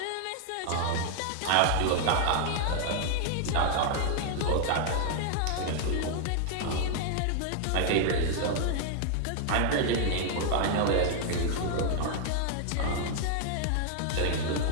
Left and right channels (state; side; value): different; both; correlation 0.00